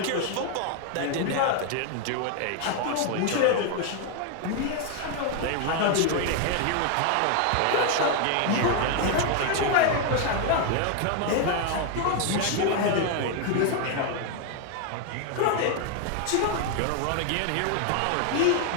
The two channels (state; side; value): different; both; correlation 0.01